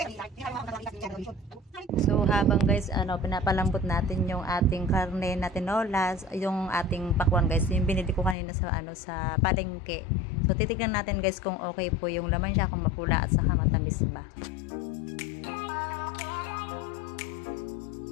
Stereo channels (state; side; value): drops out; right; at 8.3 s